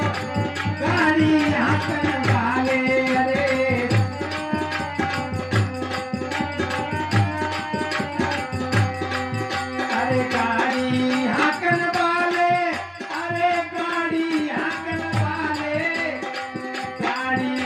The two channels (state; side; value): identical; both; correlation 1.00